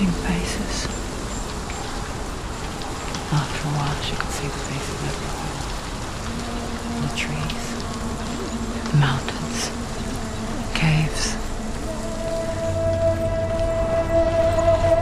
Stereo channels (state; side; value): identical; both; correlation 1.00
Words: faces. After a while, she could see the faces everywhere. The trees, the mountains, caves.